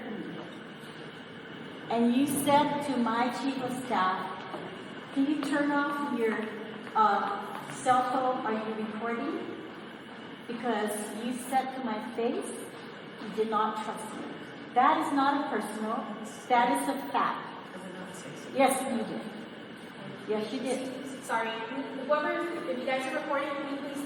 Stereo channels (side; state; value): both; identical; correlation 1.00